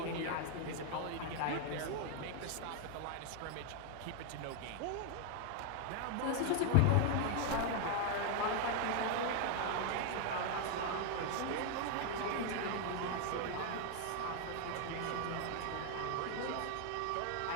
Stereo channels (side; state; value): both; different; correlation 0.00